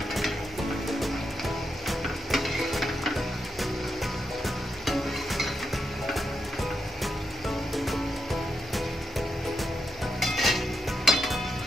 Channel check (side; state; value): both; normal; correlation 0.84